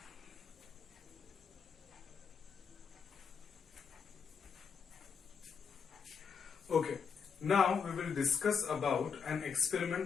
Okay, now we will discuss about an experiment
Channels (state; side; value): quieter; right; 6.1 dB